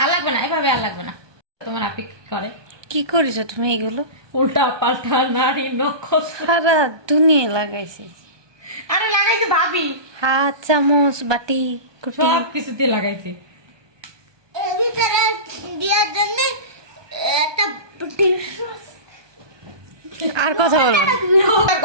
আর লাগবে না, এভাবে আর লাগবে না। তোমার আপি কি করে? কি করেছো তুমি এগুলো? উল্টা পাল্টা নারী নক্ষত্র সারা দুনিয়া লাগাইছি। আরে লাগাইছে ভাবি, হাত, চামচ, বাটি, কুটি। সব কিছুতে লাগাইছে। আর কথা বলবো না। আর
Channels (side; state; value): left; late; 1.2 ms